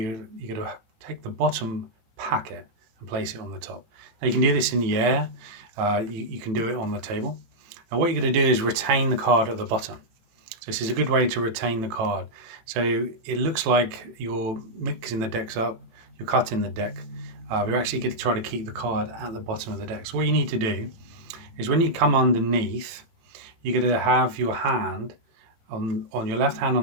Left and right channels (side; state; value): left; late; 18 ms